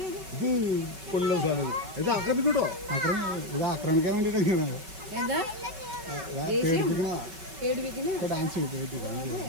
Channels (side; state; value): left; late; 5.3 ms